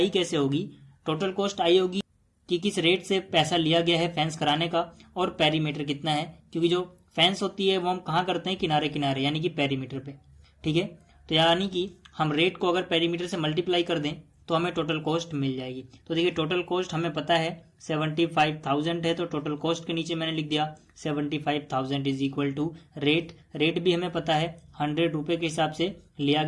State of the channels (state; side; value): identical; both; correlation 1.00